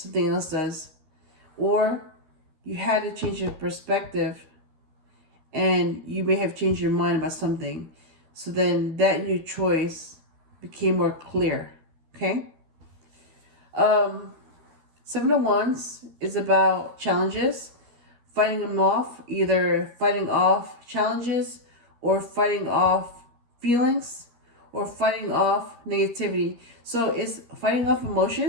else does. Or you had to change your perspective, and you may have changed your mind about something. So then that new choice became more clear. Okay? 7 of Wands is about challenges, fighting them off, either fighting off challenges or fighting off feelings or fighting off negativity. So it's fighting off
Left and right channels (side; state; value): left; late; 13 ms